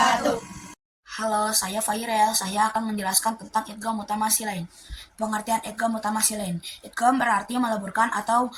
Halo, saya Fairel. Saya akan menjelaskan tentang idgham mutamatsilin. Pengertian idgham mutamatsilin. Idgham berarti meleburkan atau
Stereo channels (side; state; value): both; identical; correlation 1.00